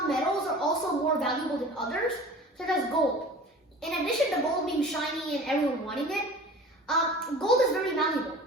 metals are also more valuable than others, such as gold. In addition to gold being shiny and everyone wanting it, gold is very malleable.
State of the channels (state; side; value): normal; both; correlation 0.41